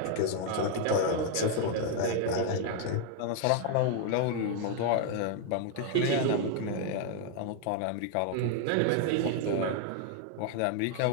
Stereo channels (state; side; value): different; both; correlation 0.00